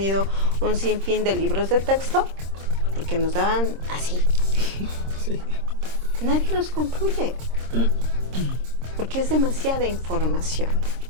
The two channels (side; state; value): left; late; 26 ms